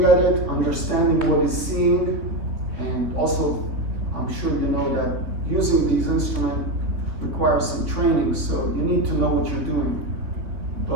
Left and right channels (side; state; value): left; late; 3.4 ms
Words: at it, understanding what he's seeing, And also, I'm sure you know that using these instruments requires some training, so you need to know what you're doing.